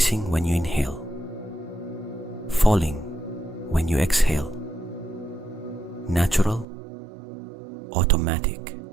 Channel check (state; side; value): drops out; left; at 6.7 s